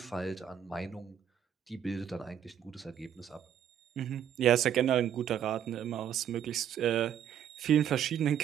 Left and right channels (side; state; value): left; quieter; 9.3 dB